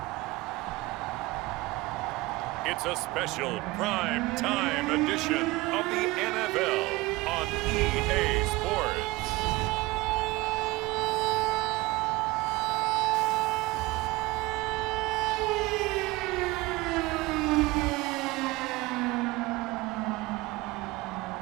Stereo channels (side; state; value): left; quieter; 21.0 dB